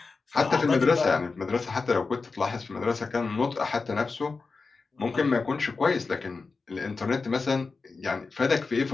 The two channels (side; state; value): right; quieter; 4.3 dB